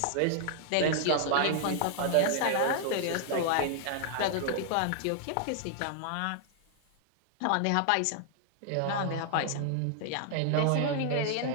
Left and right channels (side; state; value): both; different; correlation 0.00